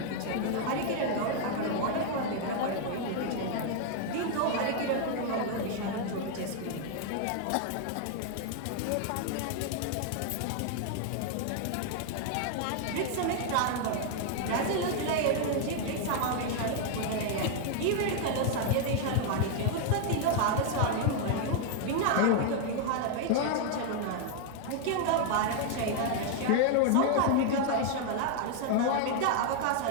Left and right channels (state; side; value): different; both; correlation 0.00